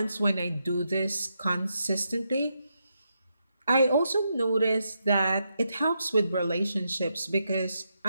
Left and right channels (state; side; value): inverted; both; correlation -0.83